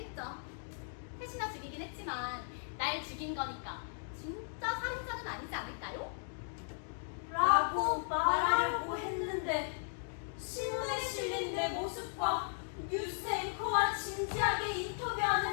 셋이나 죽이긴 했지만 날 죽인 거니까 진짜 살인자는 아니지 않을까요? 라고 말하려고 했는데 신문에 실린 내 모습과 뉴스 앵커와 진지하게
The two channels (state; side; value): silent; right; digital silence